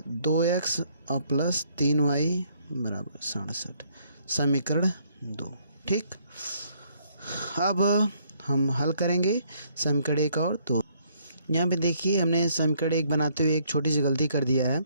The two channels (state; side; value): inverted; both; correlation -0.67